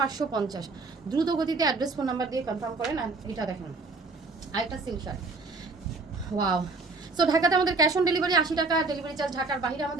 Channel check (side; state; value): left; quieter; 3.8 dB